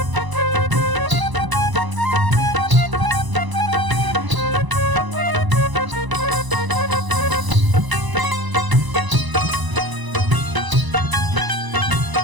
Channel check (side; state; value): left; late; 1.0 ms